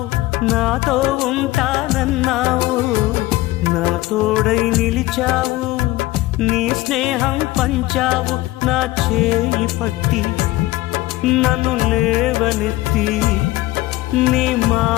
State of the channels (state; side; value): quieter; right; 18.0 dB